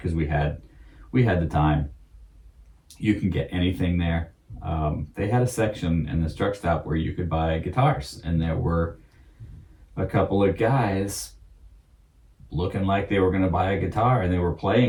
we had the time. You can get anything there. They had a section in this truck stop where you could buy guitars, and there were a couple of guys looking like they were going to buy a guitar, and they were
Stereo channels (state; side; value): identical; both; correlation 1.00